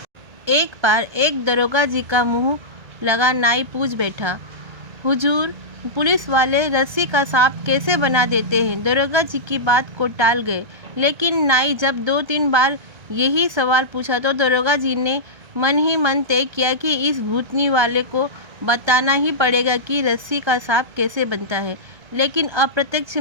एक बार एक दरोगा जी का मुंह लगा नाई पूछ बैठा, हुजूर, पुलिस वाले रस्सी का सांप कैसे बना देते हैं? दरोगा जी की बात को टाल गए, लेकिन नाई जब 2-3 बार यही सवाल पूछा तो दरोगा जी ने मन ही मन तय किया कि इस भूतनी वाले को बताना ही पड़ेगा कि रस्सी का सांप कैसे बनता है। लेकिन अप्रत्यक्ष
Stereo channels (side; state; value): left; late; 1.3 ms